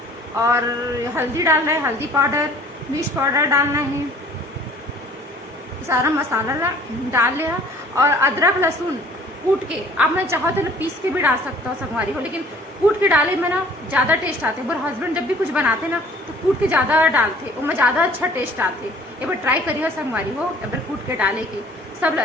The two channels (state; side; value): normal; both; correlation 0.52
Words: और हल्दी डालना है, हल्दी पाउडर, मिर्च पाउडर डालना है, सारा मसाला डाल लिया। और अदरक लहसुन कूट के आप मैं चाहो तो पीस के भी डाल सकता हूँ संगवारी हो, लेकिन कूट के डाले में ना ज़्यादा टेस्ट आते। मेरे हस्बैंड जब भी कुछ बनाते ना तो कूट के ज़्यादा डालते, उनमें ज़्यादा अच्छा टेस्ट आते। एक बार ट्राई करिए संगवारी हो, एक बार कूट के डाले के सब